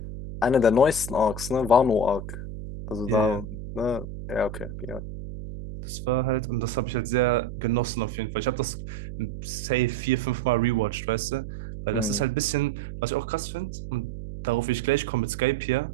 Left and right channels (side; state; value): right; noise; hum, 9 dB below the sound